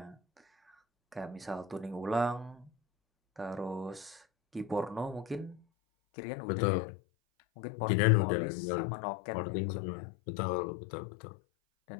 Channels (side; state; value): right; drops out; at 5.6 s